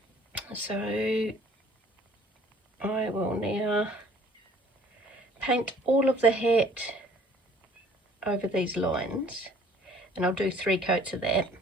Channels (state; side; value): normal; both; correlation 0.55